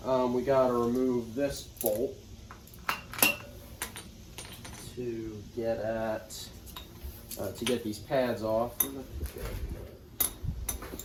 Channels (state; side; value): identical; both; correlation 1.00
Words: we got to remove this bolt to get at to get these pads off. There